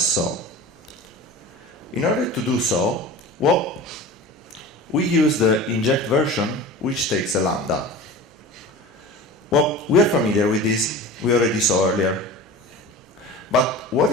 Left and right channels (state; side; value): normal; both; correlation 0.35